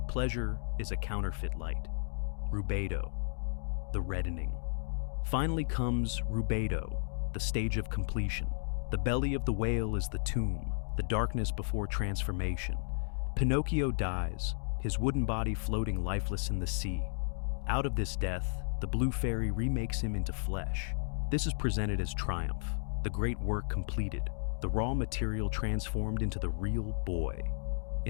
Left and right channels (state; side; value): silent; right; digital silence